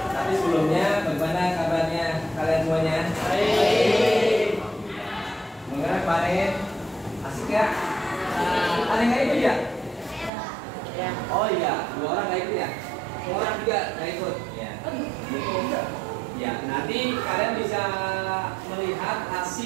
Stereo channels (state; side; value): drops out; left; at 10.3 s